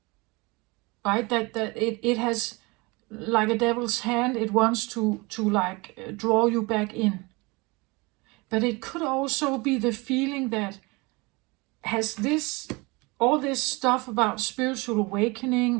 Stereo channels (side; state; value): left; quieter; 25.7 dB